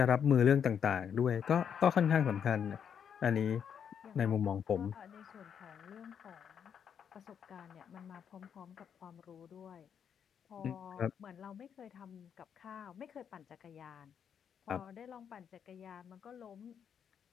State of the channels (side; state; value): right; quieter; 7.9 dB